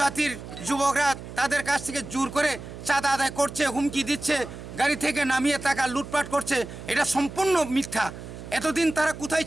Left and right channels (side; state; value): right; noise; hum, 12 dB below the sound